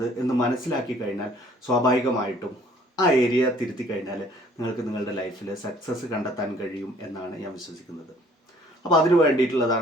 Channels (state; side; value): normal; both; correlation 0.58